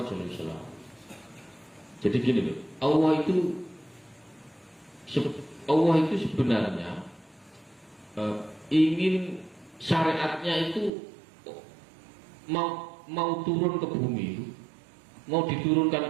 SAW. Jadi gini loh, Allah itu sebenarnya ingin syariatnya itu mau turun ke bumi itu, mau diturunkan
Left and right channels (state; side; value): drops out; left; at 10.9 s